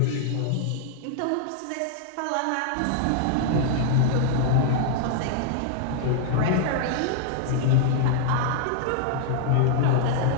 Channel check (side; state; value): both; different; correlation -0.01